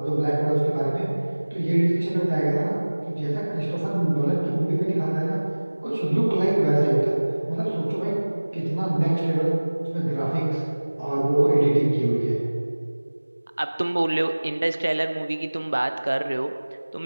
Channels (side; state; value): both; inverted; correlation -1.00